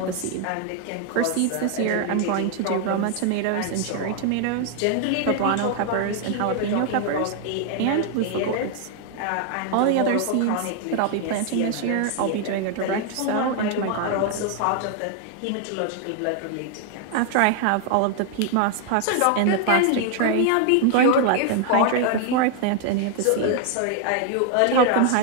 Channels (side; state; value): both; different; correlation 0.00